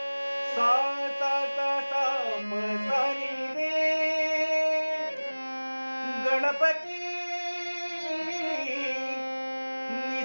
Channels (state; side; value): inverted; both; correlation -1.00